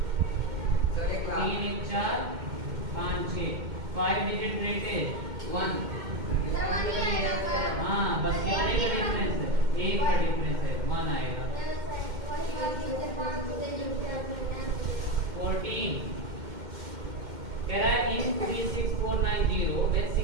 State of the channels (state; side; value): late; left; 2.1 ms